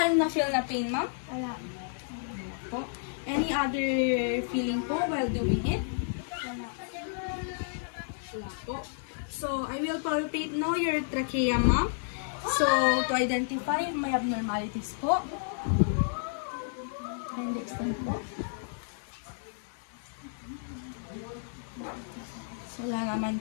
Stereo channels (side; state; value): right; silent; digital silence